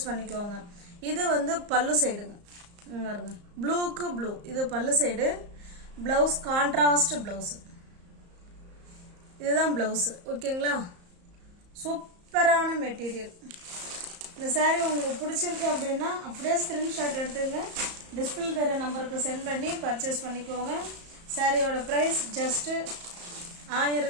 பண்ணிக்கோங்க. இது வந்து பல்லு சைடுங்க, பாருங்க, ப்ளூக்கு ப்ளூ. இது பல்லு சைடு. ப்ளவுஸ் கான்ட்ராஸ்ட் ப்ளவுஸு, இதுதான் ப்ளவுஸு. ஓகேங்களா, சூப்பரான மெட்டீரியல். இந்த saree உங்களுக்கு பிடிச்சிருக்கு அப்படின்னா அப்படியே ஸ்க்ரீன்ஷாட் எடுத்துங்க, டிஸ்பிளே தர நம்பருக்கு சென்ட் பண்ணி பர்ச்சேஸ் பண்ணிக்கோங்க. சாரியோட ப்ரைஸ் ஜஸ்ட்டு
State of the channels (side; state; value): left; late; 34 ms